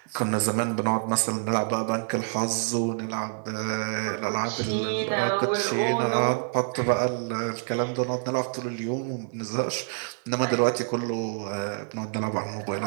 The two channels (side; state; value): left; silent; digital silence